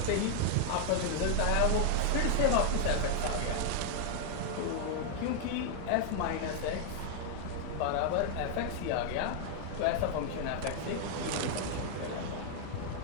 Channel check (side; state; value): both; different; correlation 0.00